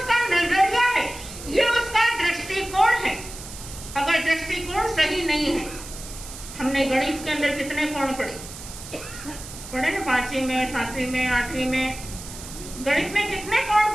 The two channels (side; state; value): right; noise; hiss, 13 dB below the sound